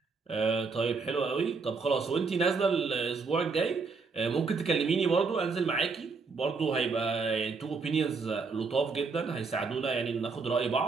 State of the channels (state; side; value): quieter; left; 4.6 dB